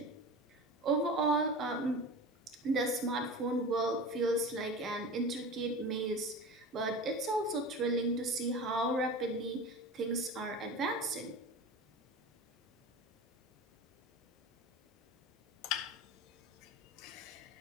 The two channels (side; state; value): both; normal; correlation 0.32